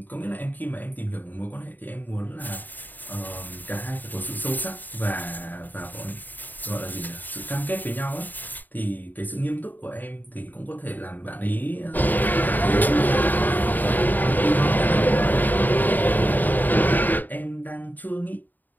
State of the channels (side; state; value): right; late; 0.087 ms